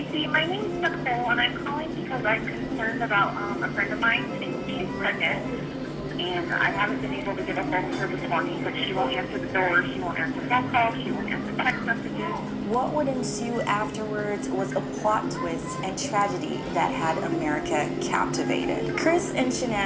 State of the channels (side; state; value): both; identical; correlation 1.00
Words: My name is Nicole, and I'm calling because I'm concerned about a friend of mine. She's pregnant, and I haven't been able to get a hold of her this morning, but she won't answer the door, she won't answer phone calls, she won't answer text messages. What would ensue afterwards was a plot twist and tragedy that had America captivated. Chris and